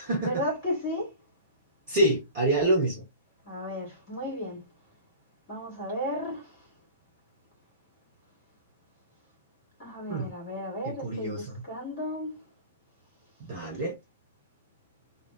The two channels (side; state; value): both; inverted; correlation -0.39